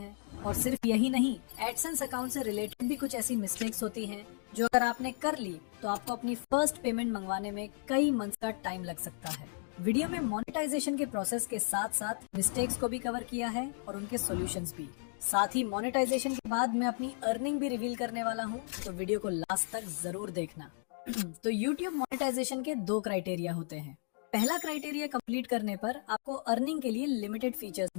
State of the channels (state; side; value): silent; right; 55 dB below the other